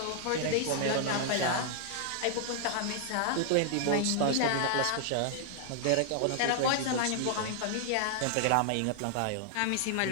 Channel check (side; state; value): both; different; correlation 0.00